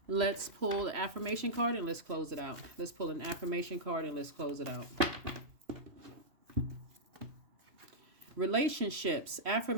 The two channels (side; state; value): left; late; 3.0 ms